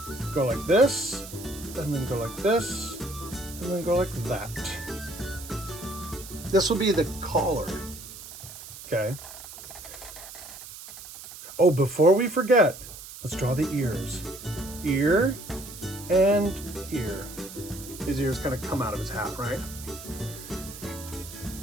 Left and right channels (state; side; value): noise; right; hiss, 14 dB below the sound